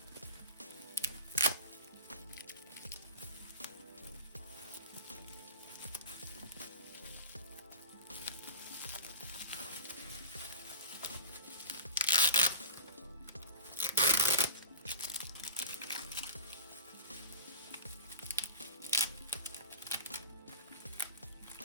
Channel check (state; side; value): inverted; both; correlation -0.31